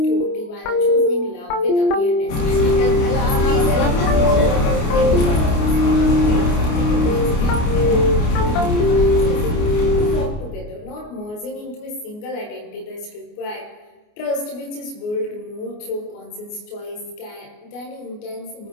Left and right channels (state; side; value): late; right; 29 ms